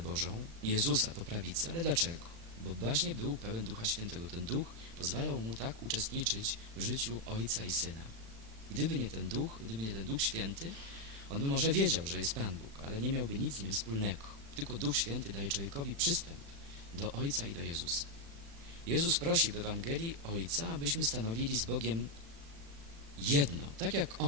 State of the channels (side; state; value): left; late; 36 ms